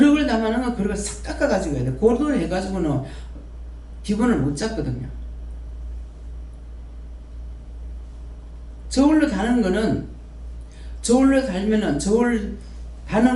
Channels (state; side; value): identical; both; correlation 1.00